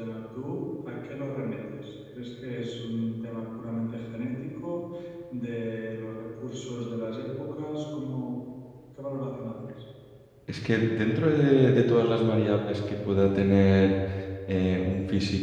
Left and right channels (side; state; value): both; identical; correlation 1.00